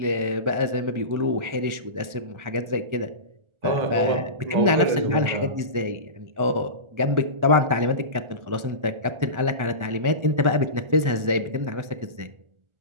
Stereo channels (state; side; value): late; left; 1.4 ms